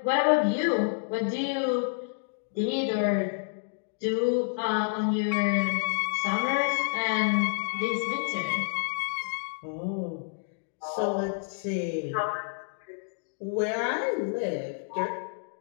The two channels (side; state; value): right; silent; digital silence